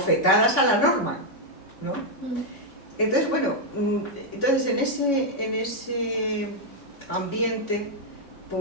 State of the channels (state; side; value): late; right; 3.5 ms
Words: a la norma, ¿no? Entonces, bueno, entonces en ese ambiente,